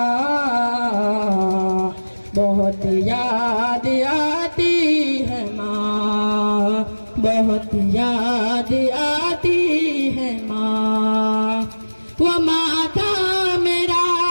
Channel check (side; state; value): both; inverted; correlation -1.00